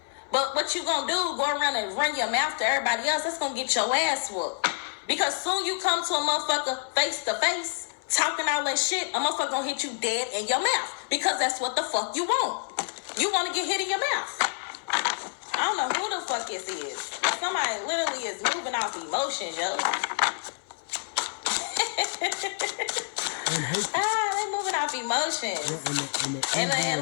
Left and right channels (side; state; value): right; silent; 57 dB below the other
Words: But what you gonna do, go around and run your mouth to everybody else, that's gonna get your ass whooped. Because soon you come to a motherfucker face to face, talking all that shit, a motherfucker gonna hit you dead in your mouth. Because that's what the fuck you want. You wanna get hit in your mouth. I don't know who the fuck this is. Somebody literally is moving off emotions, yo. They moving off emotions. Yeah,